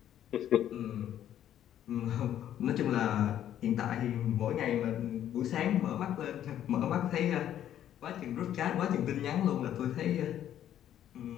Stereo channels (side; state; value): right; quieter; 11.0 dB